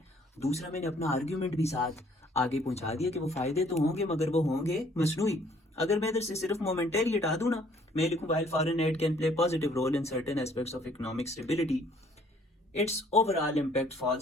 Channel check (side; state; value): both; normal; correlation 0.61